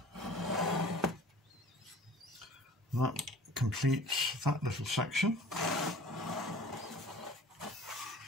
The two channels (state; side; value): normal; both; correlation 0.46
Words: And that completes that little section.